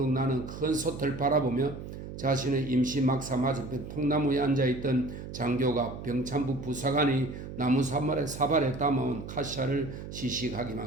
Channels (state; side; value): noise; right; hum, 10 dB below the sound